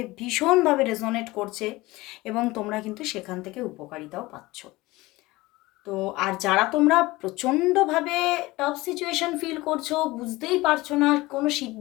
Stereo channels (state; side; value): quieter; right; 20.3 dB